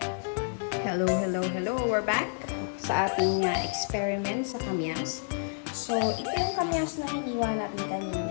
Hello. We're back sa ating experiment sa kamyas. So, ito yung kamyas na hiniwa natin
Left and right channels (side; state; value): right; silent; digital silence